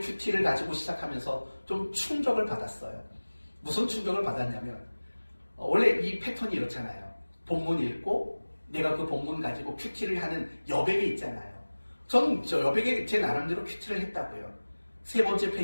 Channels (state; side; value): inverted; both; correlation -1.00